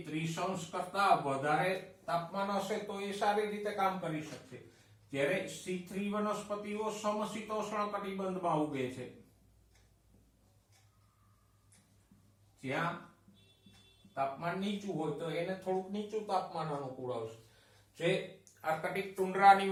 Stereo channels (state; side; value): identical; both; correlation 1.00